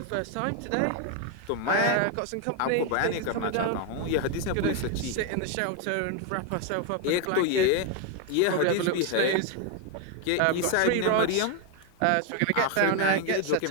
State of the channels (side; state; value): both; different; correlation 0.01